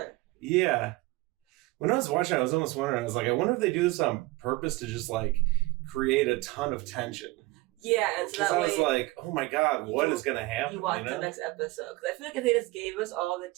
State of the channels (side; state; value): left; quieter; 21.3 dB